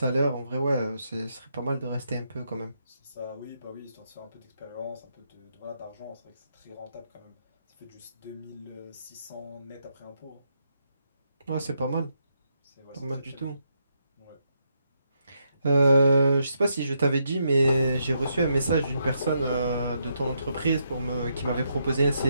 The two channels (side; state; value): both; inverted; correlation -0.79